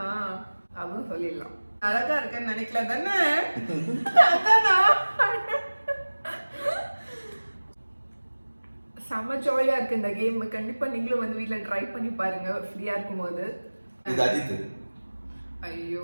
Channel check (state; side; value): inverted; both; correlation -1.00